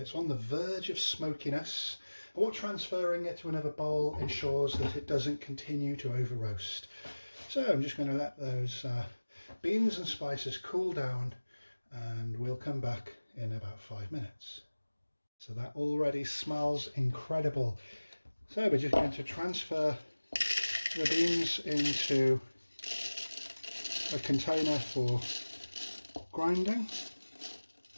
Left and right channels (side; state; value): both; inverted; correlation -1.00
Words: it's on the verge of smokiness. And what transferring it to another bowl ensures that it doesn't continue to over roast. So I'm just going to let those beans and spices cool down, and we'll come back in about 5 minutes. So that already smells incredible. So we're just going to transfer the beans into a container for grinding.